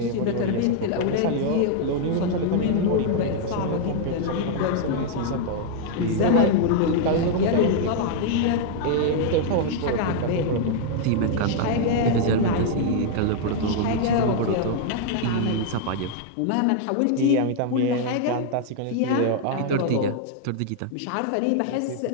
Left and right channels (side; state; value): both; different; correlation 0.00